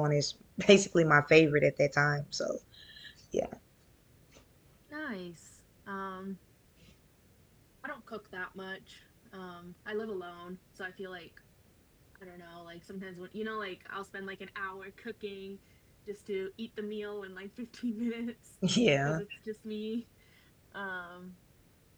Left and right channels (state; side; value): identical; both; correlation 1.00